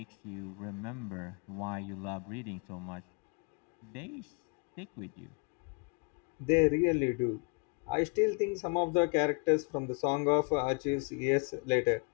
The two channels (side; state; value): right; quieter; 34.4 dB